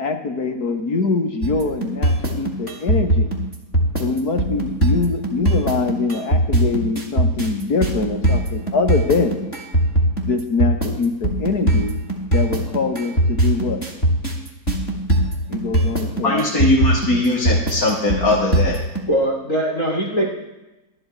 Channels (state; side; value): late; right; 3.5 ms